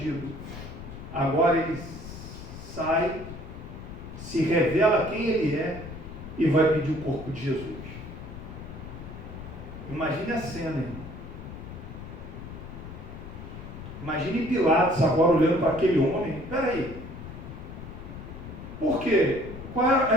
agora ele sai, se revela quem ele é e vai pedir o corpo de Jesus. Imagine a cena, irmão. Imagine Pilatos agora olhando para aquele homem. Espera aí. Por quê?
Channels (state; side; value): noise; left; rumble, 11 dB below the sound